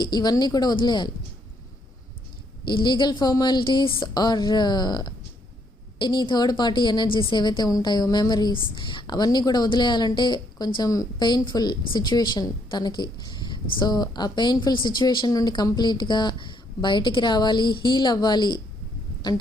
ఇవన్నీ కూడా వదిలేయాలి. ఈ legal formalities or any third party energies ఏవైతే ఉంటాయో, మెమరీస్, అవన్నీ కూడా వదిలేయాలంటే కొంచెం పెయిన్ఫుల్ సిచ్యువేషన్ తనకి. సో ఆ పెయిన్ఫుల్ సిచ్యువేషన్ నుండి కంప్లీట్గా బయటికి రావాలి, హీల్ అవ్వాలి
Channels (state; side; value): normal; both; correlation 0.72